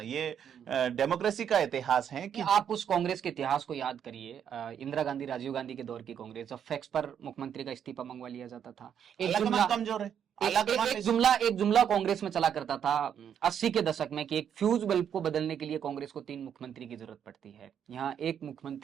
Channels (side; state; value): left; quieter; 8.6 dB